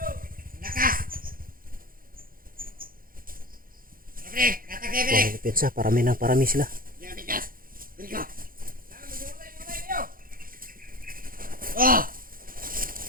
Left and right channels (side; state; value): left; late; 0.41 ms